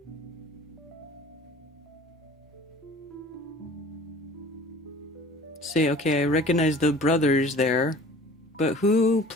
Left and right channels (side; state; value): both; normal; correlation 0.46